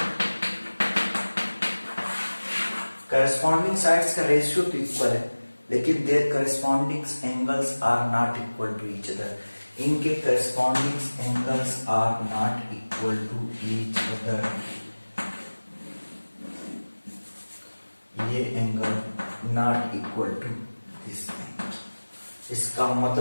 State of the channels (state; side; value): inverted; both; correlation -1.00